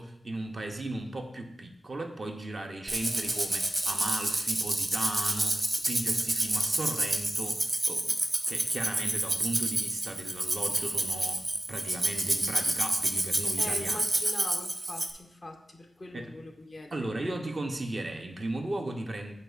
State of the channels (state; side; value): normal; both; correlation 0.95